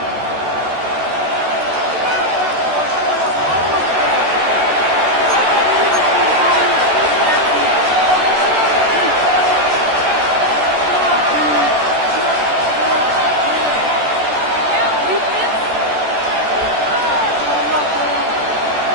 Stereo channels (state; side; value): late; left; 14 ms